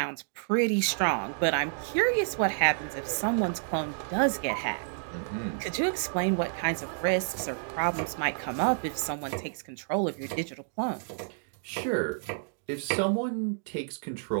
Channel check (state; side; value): silent; left; digital silence